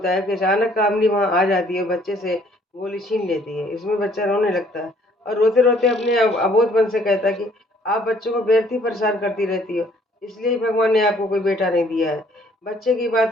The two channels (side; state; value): both; normal; correlation 0.61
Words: है कि अचानक कामनी वहां आ जाती है, बच्चे से गोली छीन लेती है। इसमें बच्चा रोने लगता है और रोते रोते अपने अबोधपन से कहता है कि आप बच्चों को व्यर्थ ही परेशान करती रहती हो, इसलिए ही भगवान ने आपको कोई बेटा नहीं दिया है। बच्चे की